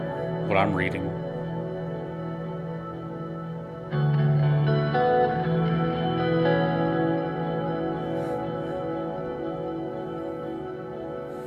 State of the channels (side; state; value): both; identical; correlation 1.00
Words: what I'm reading.